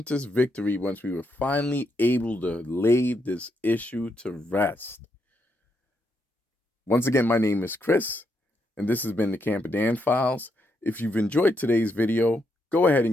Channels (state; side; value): normal; both; correlation 0.79